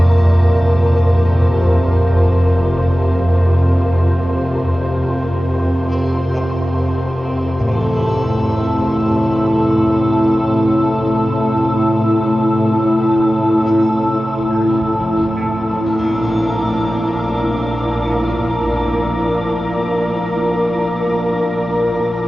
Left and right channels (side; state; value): both; normal; correlation 0.95